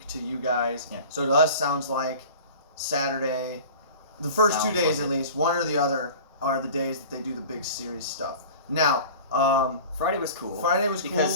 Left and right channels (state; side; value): inverted; both; correlation -0.39